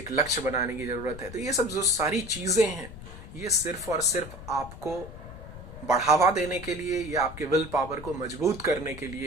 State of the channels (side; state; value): left; noise; rumble, 13 dB below the sound